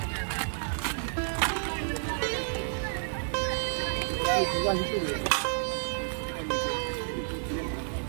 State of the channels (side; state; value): left; silent; 58 dB below the other